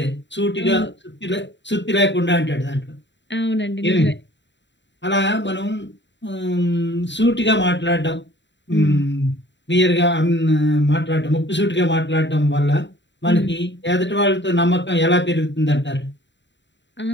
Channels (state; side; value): late; right; 0.52 ms